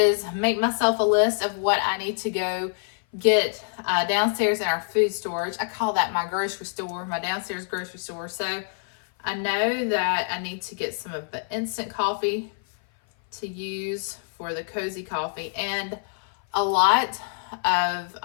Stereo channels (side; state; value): right; silent; 57 dB below the other